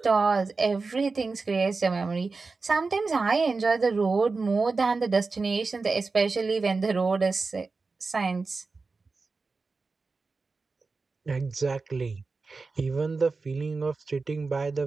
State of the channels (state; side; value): quieter; left; 4.1 dB